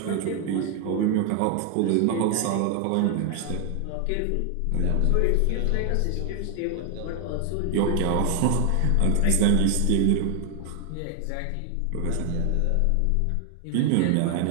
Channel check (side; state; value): both; different; correlation 0.00